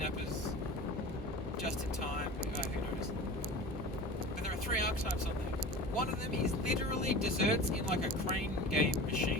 Just in Time, who knows. But there are 3 archetypes on there. One of them is literally desserts in like a crane game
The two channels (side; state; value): both; normal; correlation 0.36